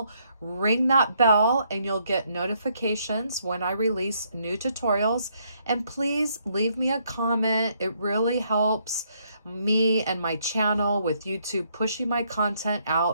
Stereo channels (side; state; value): both; inverted; correlation -0.72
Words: ring that bell, and you'll get notifications when I release new tutorials. And please leave me a comment. It really helps me and my channel with YouTube pushing my content